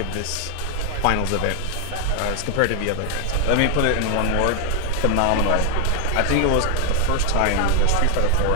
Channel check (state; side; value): different; both; correlation 0.00